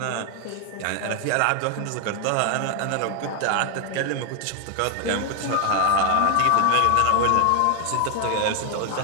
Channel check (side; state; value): both; different; correlation 0.01